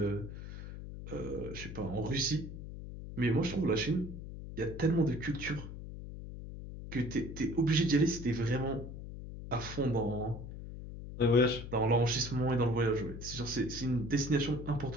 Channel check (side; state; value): left; noise; hum, 10 dB below the sound